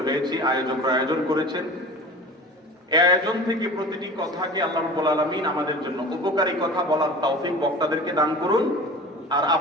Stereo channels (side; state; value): both; normal; correlation 0.38